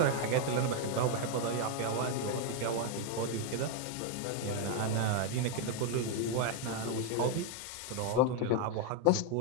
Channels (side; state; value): both; different; correlation 0.01